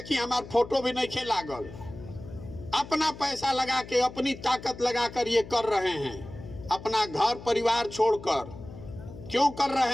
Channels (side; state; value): left; noise; hum, 15 dB below the sound